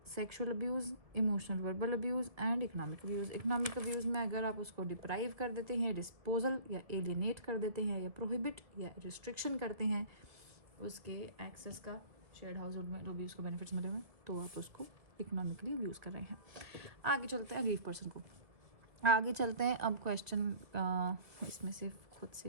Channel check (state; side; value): late; left; 2.0 ms